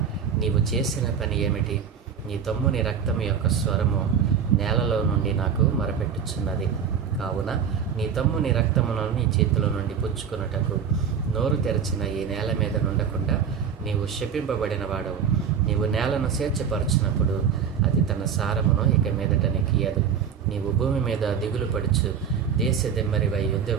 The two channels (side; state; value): left; quieter; 7.3 dB